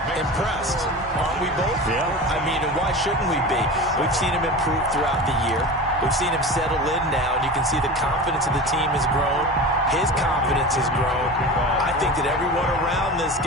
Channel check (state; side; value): normal; both; correlation 0.31